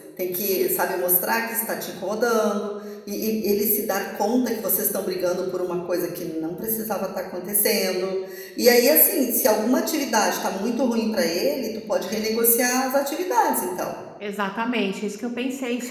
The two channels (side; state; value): both; identical; correlation 1.00